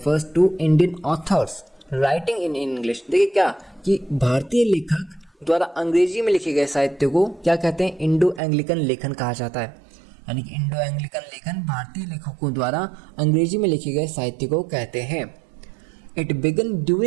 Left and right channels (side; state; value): left; drops out; at 8.4 s